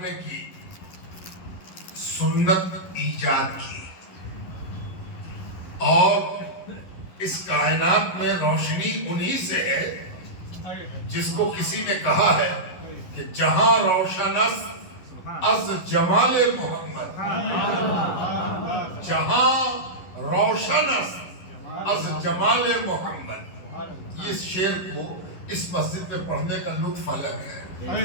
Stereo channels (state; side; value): late; right; 11 ms